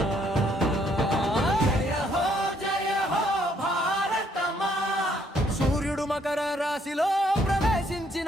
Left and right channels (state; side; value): normal; both; correlation 0.68